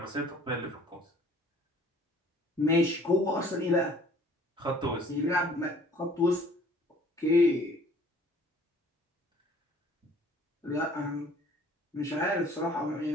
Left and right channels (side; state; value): both; normal; correlation 0.55